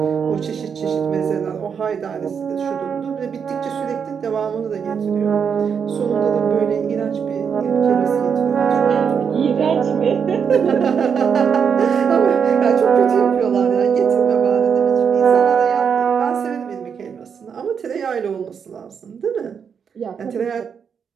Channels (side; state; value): left; quieter; 6.9 dB